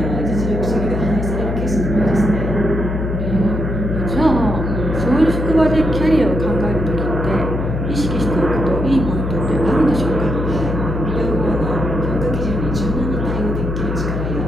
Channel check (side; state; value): left; noise; hum, 3 dB below the sound